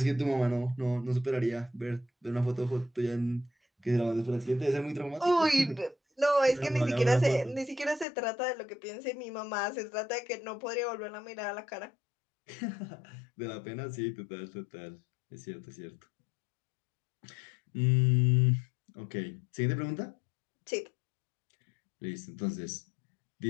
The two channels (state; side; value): drops out; right; at 8.1 s